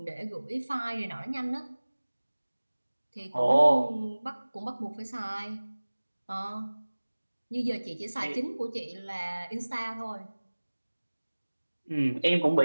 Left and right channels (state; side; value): inverted; both; correlation -1.00